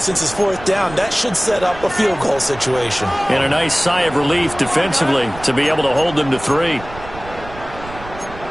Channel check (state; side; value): noise; right; rumble, 15 dB below the sound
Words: it's 4th down, that should set up a field goal situation. And a nice sigh of relief defensively to be able to hold them to 3.